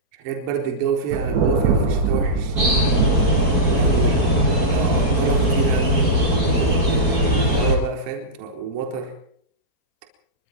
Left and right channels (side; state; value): left; late; 4.6 ms